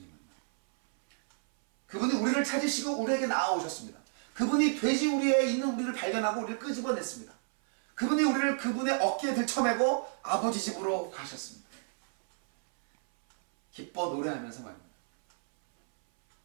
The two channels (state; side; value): silent; left; 58 dB below the other